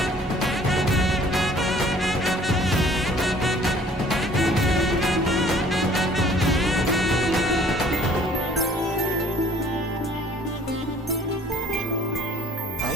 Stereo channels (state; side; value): normal; both; correlation 0.54